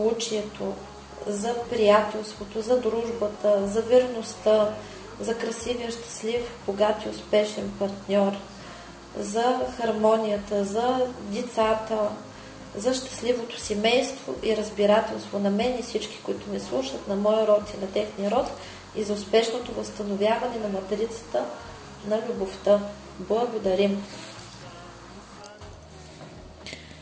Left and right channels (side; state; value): both; identical; correlation 1.00